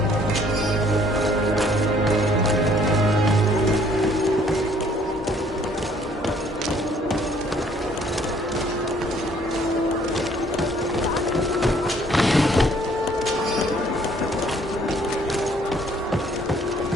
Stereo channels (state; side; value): normal; both; correlation 0.61